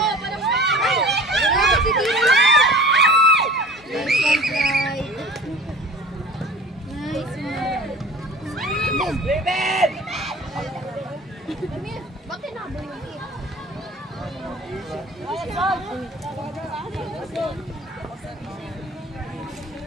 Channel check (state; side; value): normal; both; correlation 0.42